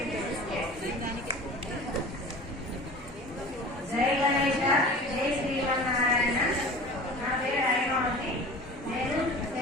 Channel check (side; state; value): both; normal; correlation 0.38